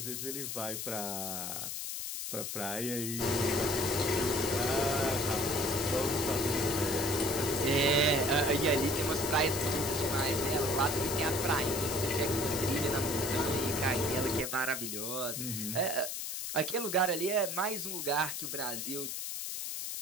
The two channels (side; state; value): left; noise; hiss, 4 dB below the sound